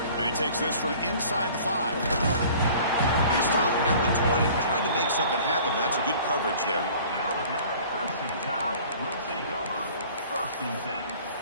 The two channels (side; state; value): both; inverted; correlation -0.48